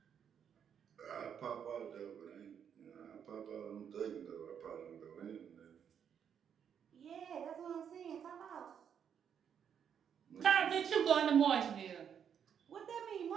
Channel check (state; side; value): quieter; left; 8.1 dB